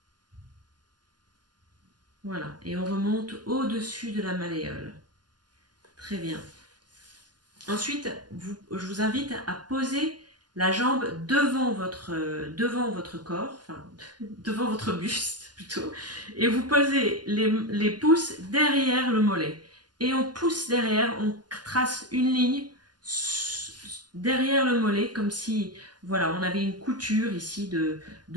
Voilà, et on remonte au-dessus de la malléole. Très bien. Ensuite, je vous invite à poser la jambe devant votre corps, enfin devant votre buste plutôt, et vous posez les pouces derrière le mollet. Et on pousse derrière, on trace une ligne derrière le mollet, comme si voilà, on avait une couture ici de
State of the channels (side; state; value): left; late; 0.70 ms